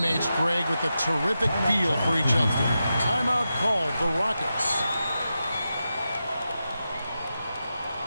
Greg, with a terrific feel for each other. Timeout called the Rockets.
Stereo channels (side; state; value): both; inverted; correlation -0.90